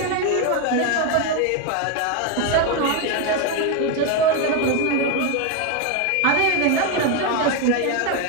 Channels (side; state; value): both; different; correlation 0.02